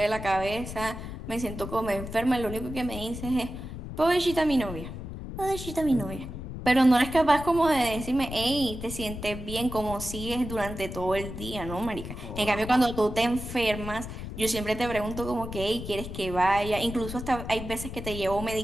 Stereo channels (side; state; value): left; noise; rumble, 9 dB below the sound